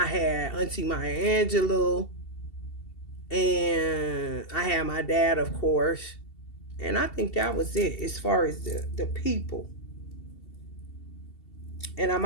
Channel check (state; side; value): late; right; 2.7 ms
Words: had Auntie Maya Angelou. And I had my dad, of course. And I think that was it as far as the people. And I